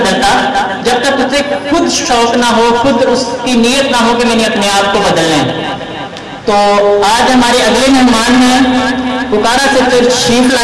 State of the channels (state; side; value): identical; both; correlation 1.00